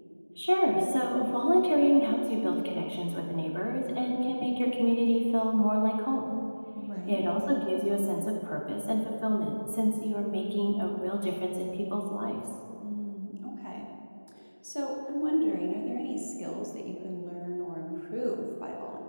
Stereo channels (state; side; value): inverted; both; correlation -1.00